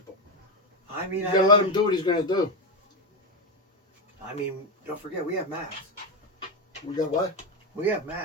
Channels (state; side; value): normal; both; correlation 0.11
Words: I mean, You gotta let him do what he's gonna do. I mean, don't forget, we have Max. We got what? We have